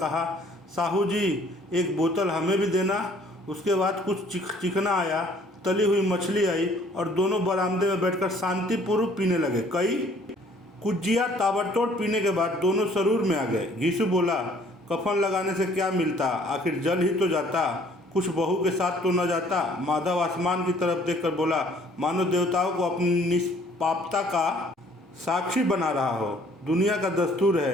साहू जी, एक बोतल हमें भी देना। उसके बाद कुछ चिकना आया, तली हुई मछली आई और दोनों बरामदे में बैठकर शांतिपूर्वक पीने लगे। कई कुजिया ताबड़तोड़ पीने के बाद दोनों सरूर में आ गए। घीसू बोला, कफन लगाने से क्या मिलता, आखिर जल ही तो जाता, कुछ बहू के साथ तो न जाता। माधव आसमान की तरफ देखकर बोला, मानो देवताओं को अपनी निष्पापता का साक्षी बना रहा हो। दुनिया का दस्तूर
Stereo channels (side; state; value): both; normal; correlation 0.58